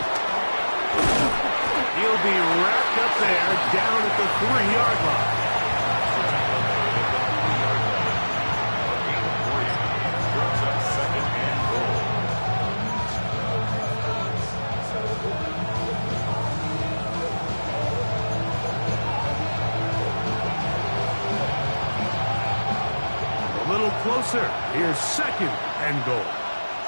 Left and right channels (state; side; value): inverted; both; correlation -1.00